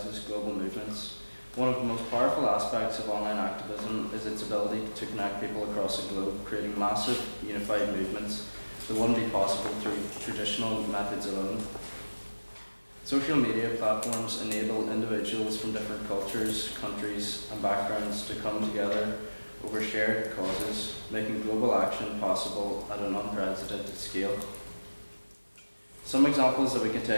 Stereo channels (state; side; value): inverted; both; correlation -1.00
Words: global movements. One of the most powerful aspects of online activism is its ability to connect people across the globe, creating massive, unified movements that wouldn't be possible through traditional methods alone. Social media platforms enable individuals from different cultures, countries, and backgrounds to come together over shared causes, making global action possible at an unprecedented scale. Some examples that we can